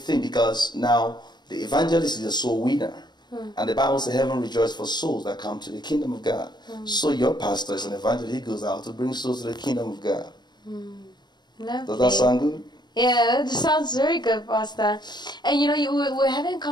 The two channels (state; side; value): late; right; 0.21 ms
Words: because now the evangelist is a soul winner. And the Bible says heaven rejoices for souls that come to the kingdom of God. So your pastor is an evangelist. He goes out to bring souls to the kingdom of God. Lovely. Does that sound good? Yeah, that sounds very good, Pastor. And we were having a